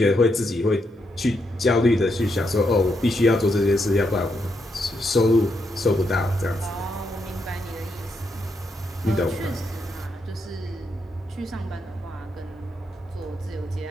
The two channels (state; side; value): normal; both; correlation 0.80